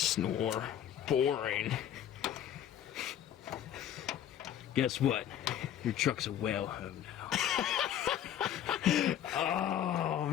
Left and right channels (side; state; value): right; quieter; 10.4 dB